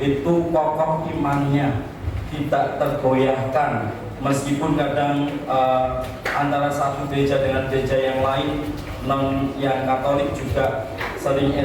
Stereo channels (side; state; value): both; identical; correlation 1.00